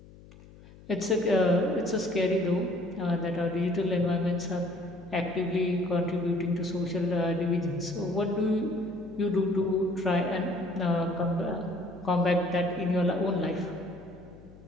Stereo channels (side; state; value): left; noise; hum, 21 dB below the sound